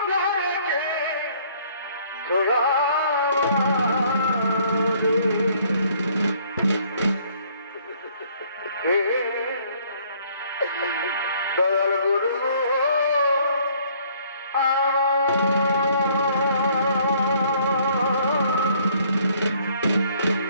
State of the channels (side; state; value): both; inverted; correlation -0.61